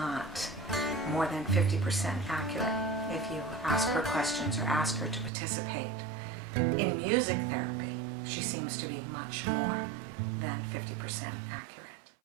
more than 50% accurate if you ask her questions or ask her to participate. In music therapy, she seems to be much more than 50% accurate.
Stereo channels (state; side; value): drops out; left; at 5.3 s